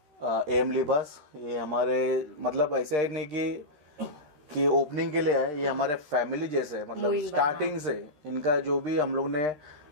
एम लिबास। ये हमारे मतलब ऐसे ही नहीं कि ओपनिंग के लिए आए, ये हमारे फैमिली जैसे, मतलब स्टार्टिंग से इनका जो भी हम लोग ने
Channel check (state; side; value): late; left; 13 ms